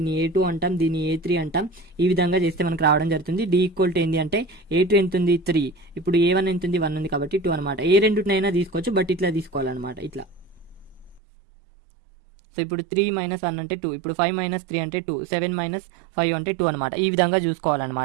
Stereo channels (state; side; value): drops out; left; at 11.2 s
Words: a2 అంటాం, దీన్ని a3 అంటాం. ఈ విధంగా చేస్తే మనకు రావడం జరుగుతుంది. d = ఏంటి అంటే a2 ఎంత ఉంది 3, ఇప్పుడు a1 ఎంత ఉంది 1 ఉంది కాబట్టి 2 అనమాట. ఏ రెండునైనా తీసుకోవచ్చు, బట్ ఇట్లా తీసుకోవాలన్నమాట. ఇట్లా. సో ఇప్పుడు 3 - 1 అంటే 2, ఇప్పుడు 5 - 3 అంటే 2, 7 - 5 అంటే 2 అనమాట. ఈ విధంగా